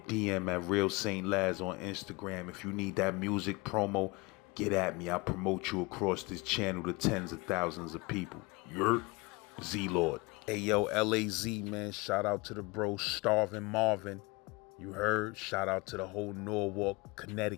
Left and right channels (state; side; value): quieter; right; 25.8 dB